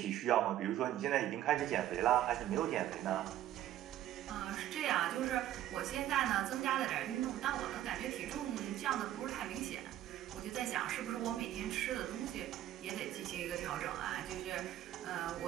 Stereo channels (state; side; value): quieter; left; 12.7 dB